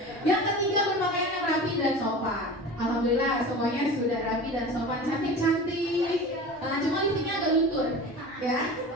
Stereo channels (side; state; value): both; normal; correlation 0.34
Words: Yang ketiga, berpakaian yang rapi dan sopan. Alhamdulillah semuanya sudah rapi dan sopan, cantik-cantik. Cuma lipstiknya agak luntur, ya.